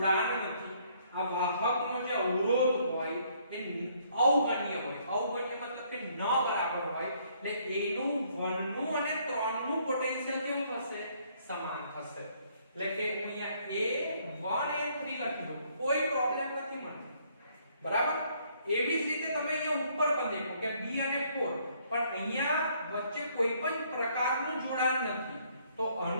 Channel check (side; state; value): both; inverted; correlation -0.66